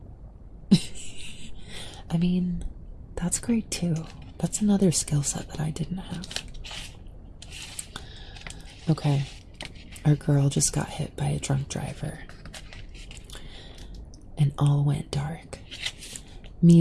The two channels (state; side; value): identical; both; correlation 1.00